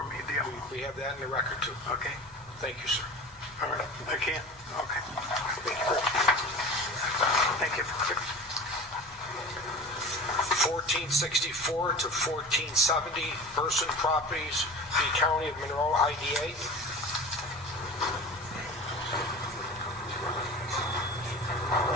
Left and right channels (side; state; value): both; normal; correlation 0.35